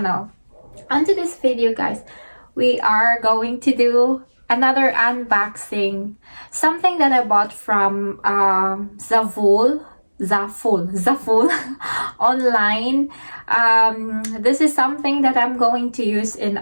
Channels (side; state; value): both; inverted; correlation -1.00